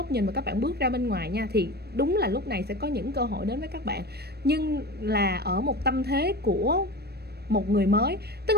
nhìn và các bạn bước ra bên ngoài nha, thì đúng là lúc này sẽ có những cơ hội đến với các bạn, nhưng là ở một tâm thế của một người mới. Tức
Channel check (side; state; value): left; late; 0.47 ms